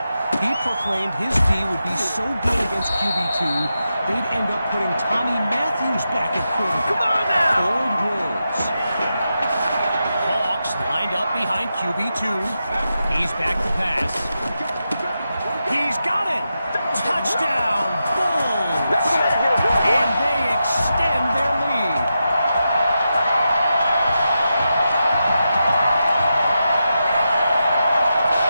He proclaimed his D would be so good against QB2, they'd end up putting Tommy Matthews back at quarterback. Come on now! Bold words. Hawks lined up behind QB2. He's back to pass. He's got it! Touchdown, Bulls! And they extend their lead.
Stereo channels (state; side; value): inverted; both; correlation -0.88